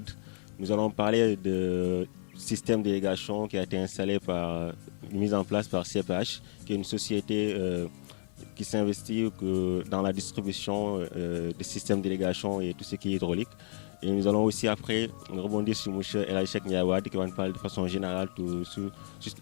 Nous allons parler de système d'irrigation qui a été installé mis en place par CPH, qui est une société qui s'investit dans la distribution des systèmes d'irrigation et tout ce qui est hydraulique. Et nous allons aussi après rebondir sur M. El Hadji Cheikh Ndiaye Wade qui va nous parler de façon générale tout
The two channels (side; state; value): right; silent; 57 dB below the other